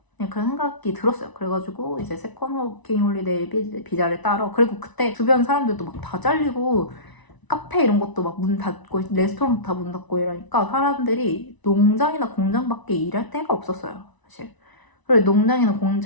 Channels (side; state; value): right; late; 1.0 ms